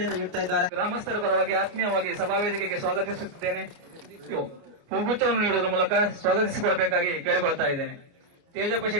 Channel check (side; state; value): left; late; 29 ms